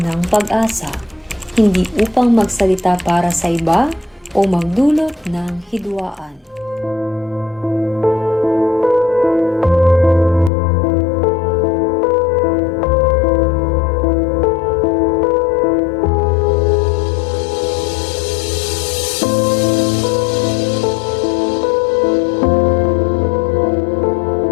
pag-asa, hindi upang magsalita para sa iba o magdulot ng hidwaan.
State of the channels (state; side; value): drops out; right; at 10.5 s